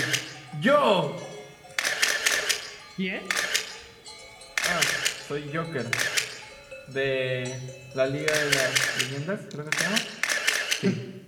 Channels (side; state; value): both; identical; correlation 1.00